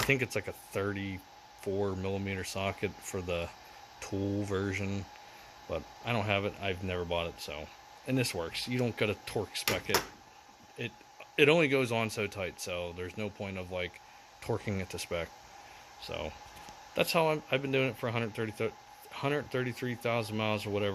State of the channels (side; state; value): both; identical; correlation 1.00